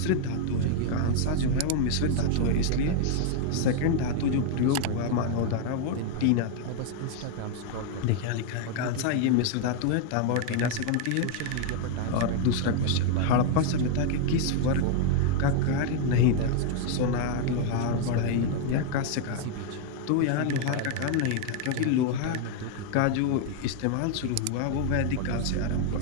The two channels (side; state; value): both; different; correlation 0.00